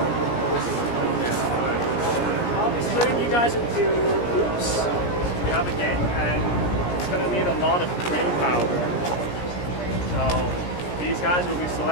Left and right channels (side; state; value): right; late; 17 ms